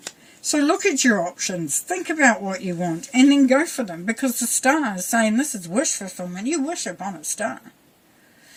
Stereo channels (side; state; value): both; identical; correlation 1.00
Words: So look at your options, think about what you want, and then go for them, because the star is saying this is wish fulfillment. You wish upon a star.